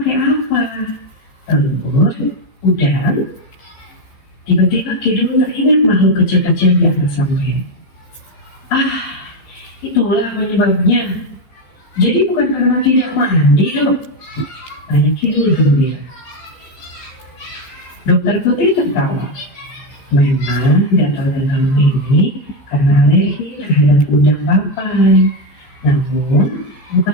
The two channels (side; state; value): right; late; 15 ms